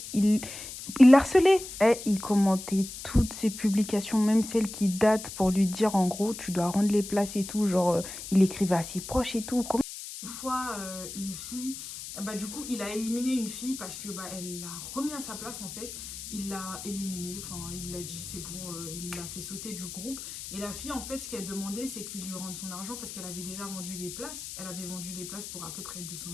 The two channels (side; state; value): left; noise; hiss, 10 dB below the sound